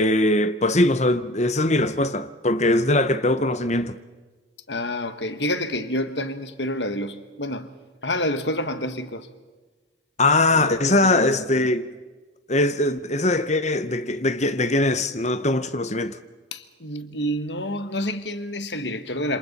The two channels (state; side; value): normal; both; correlation 0.25